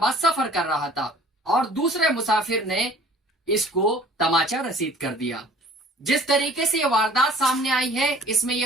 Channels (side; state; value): both; normal; correlation 0.51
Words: सफर कर रहा था और दूसरे मुसाफिर ने इसको तमाचा रसीद कर दिया। जिस तरीके से ये वारदात सामने आई है इसमें